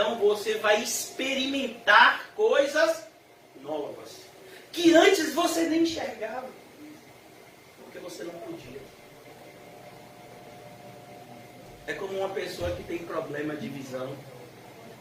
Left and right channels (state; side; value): identical; both; correlation 1.00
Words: você vai experimentar coisas novas que antes você nem enxergava, porque você não podia. É como uma pessoa que tem problema de visão